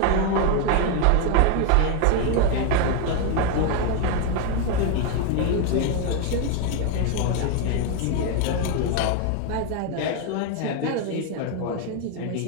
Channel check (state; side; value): different; both; correlation 0.01